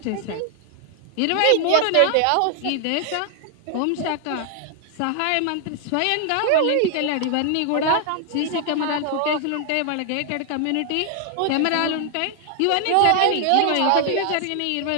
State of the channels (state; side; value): different; both; correlation 0.00